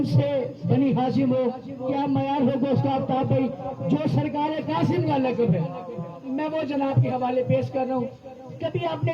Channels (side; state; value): both; identical; correlation 1.00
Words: بنی ہاشم ہو، کیا معیار ہوگا اس کا آفتاب بھائی. جو سرکار قاسم کا لقب ہے میں وہ جناب کے حوالے پیش کر رہا ہوں. کبھی آپ نے